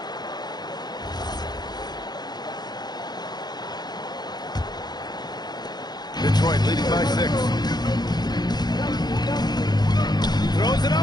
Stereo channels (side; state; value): right; late; 0.20 ms